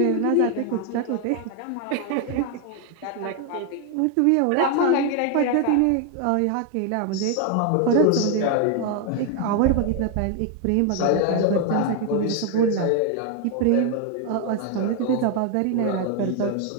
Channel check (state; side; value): different; both; correlation 0.01